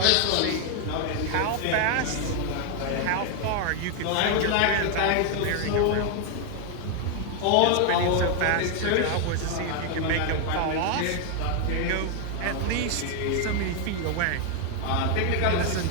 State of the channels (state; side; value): different; both; correlation 0.01